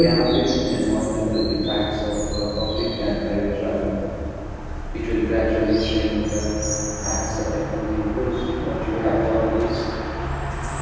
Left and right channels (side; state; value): both; identical; correlation 1.00